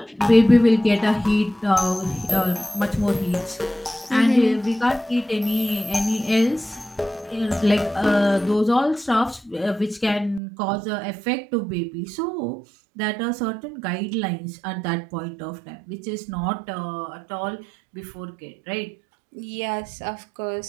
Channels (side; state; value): left; drops out; at 10.4 s